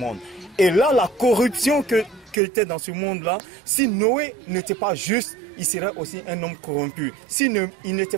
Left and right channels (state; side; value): drops out; left; at 2.4 s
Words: Et là, la corruption qui était dans ce monde-là, si Noé n'était pas juste, il serait aussi un homme corrompu. S'il n'était